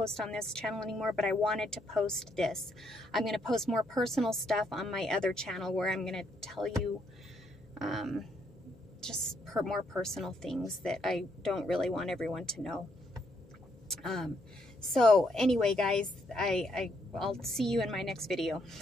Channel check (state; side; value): normal; both; correlation 0.74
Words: on this channel anymore, but I wanted to post this. I'm going to post more personal stuff on my other channel, where I'm going to tell you just more personal things that I don't really want everyone to know. So anyway, guys, I'll see you in my next video.